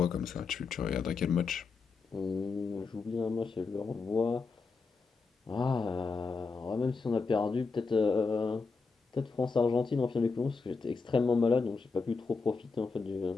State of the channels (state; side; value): quieter; right; 4.5 dB